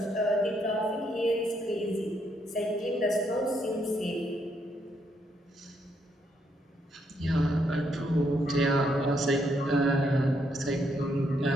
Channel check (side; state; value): both; normal; correlation 0.75